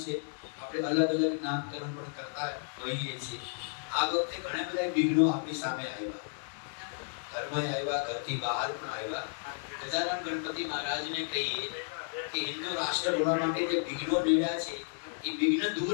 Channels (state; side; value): silent; right; digital silence